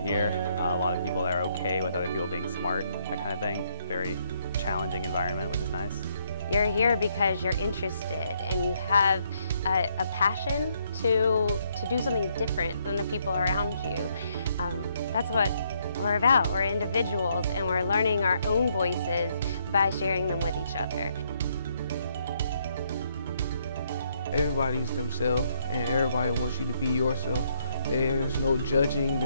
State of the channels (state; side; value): inverted; both; correlation -0.72